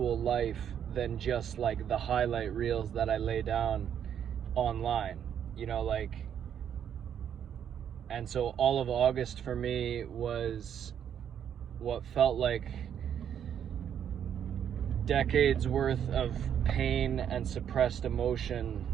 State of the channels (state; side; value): quieter; left; 8.9 dB